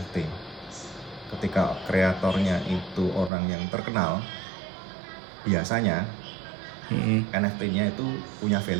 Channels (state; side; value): drops out; left; at 3.3 s